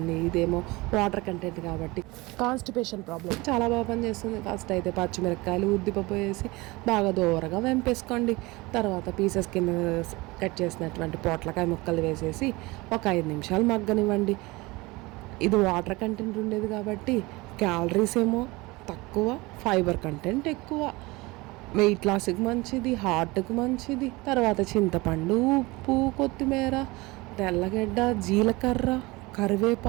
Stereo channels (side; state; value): left; quieter; 22.8 dB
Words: ఇదేమో వాటర్ కంటెంట్ కాబట్టి కాన్స్టిపేషన్ ప్రాబ్లం చాలా బాగా పనిచేస్తుంది. ఫస్ట్ అయితే పచ్చిమిరపకాయలు ఉద్దిపప్పు వేసి బాగా దూరగా వెంపేసుకోండి. తర్వాత పీసెస్ కింద కట్ చేసినటువంటి పొట్లకాయ ముక్కలు వేసేసి ఒక 5 నిమిషాలు మగ్గనివ్వండి. ఇది వాటర్ కంటెంట్ ఉండేది కాబట్టి క్యాలరీస్ ఏమో తక్కువ, ఫైబర్ కంటెంట్ ఎక్కువ, వెయిట్ లాస్కి మంచిది, హార్ట్కి మంచిది. తర్వాత చింతపండు, ఉప్పు, కొత్తిమీర, తెల్లగడ్డ, జీలకర్ర,